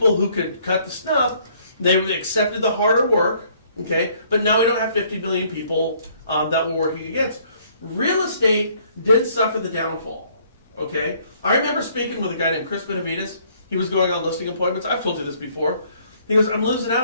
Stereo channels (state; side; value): inverted; both; correlation -0.63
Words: who could cut the snuff. They accepted the harder work, okay? But now we don't have 50 million people that we're working against. Real estate did suffer the downfall, okay? I remember speaking with a guy named Chris Benavides. He was going on listing appointments. I've told you this before. He goes, I'm losing